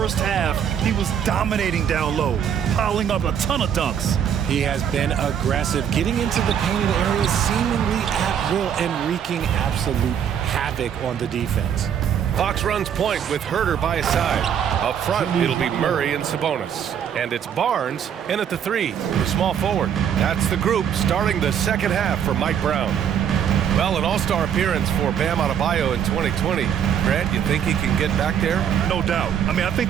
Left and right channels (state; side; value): quieter; left; 8.6 dB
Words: half, he was dominating down low, piling up a ton of dunks. He has been aggressive, getting into the painted area seemingly at will and wreaking absolute havoc on the defense. Fox runs point with Herder by his side. Up front, it'll be Murray and Sabonis. And it's Barnes in at the 3, the small forward. That's the group starting the second half for Mike Brown. Well, an all-star appearance for Bam Adebayo in 2020. Grant, you think he can get back there? No doubt. I mean, I